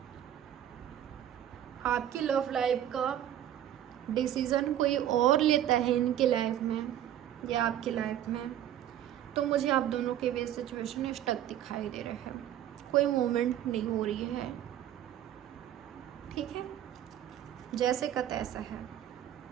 आपकी लव लाइफ का डिसीज़न कोई और लेता है इनके लाइफ में या आपकी लाइफ में, तो मुझे आप दोनों के बीच सिचुएशन स्टक दिखाई दे रहे हैं, कोई मूवमेंट नहीं हो रही है, ठीक है। जैसे का तैसा है,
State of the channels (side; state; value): left; quieter; 11.3 dB